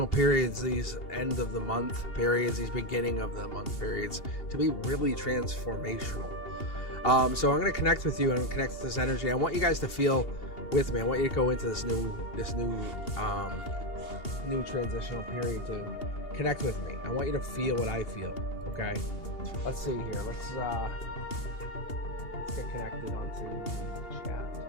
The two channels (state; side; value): late; right; 2.8 ms